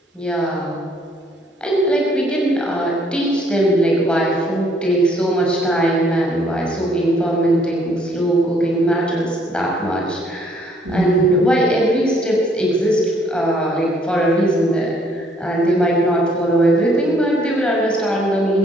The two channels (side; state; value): both; normal; correlation 0.65